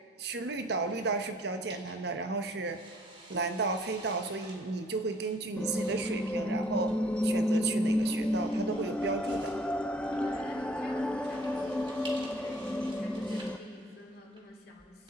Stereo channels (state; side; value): normal; both; correlation 0.58